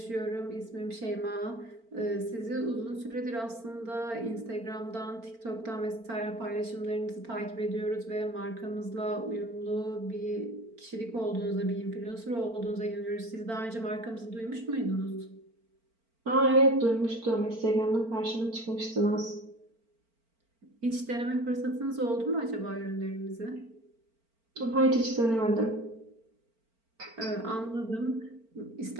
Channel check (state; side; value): late; left; 4.4 ms